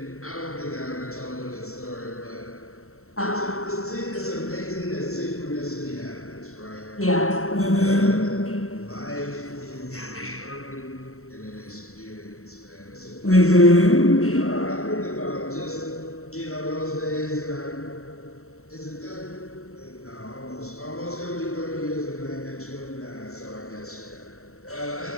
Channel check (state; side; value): late; right; 0.63 ms